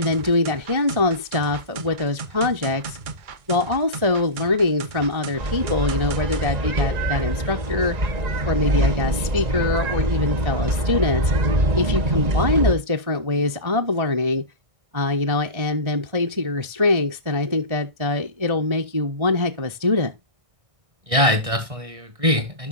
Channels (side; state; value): left; late; 1.6 ms